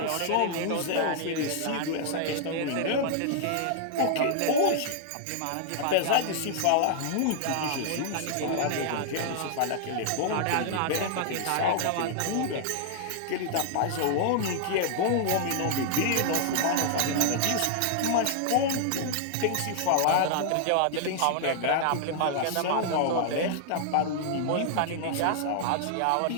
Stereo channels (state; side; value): different; both; correlation -0.01